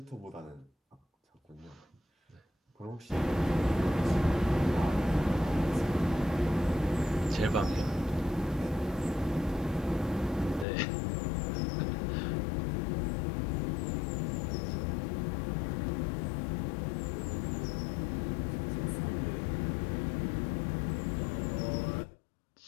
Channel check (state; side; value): drops out; right; at 10.7 s